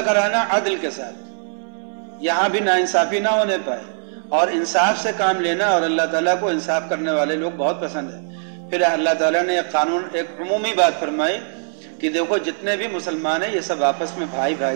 کرانا؟ عدل کے ساتھ، یہاں بھی ناانصافی نہ ہونے پائے، اور انصاف سے کام لینا، اور اللہ تعالیٰ کو انصاف کرنے والے لوگ بہت پسند ہیں۔ پھر اللہ تعالیٰ نے ایک عمومی بات فرمائی کہ دیکھو جتنے بھی مسلمان ہیں یہ سب آپس میں بھائی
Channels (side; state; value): left; silent; 65 dB below the other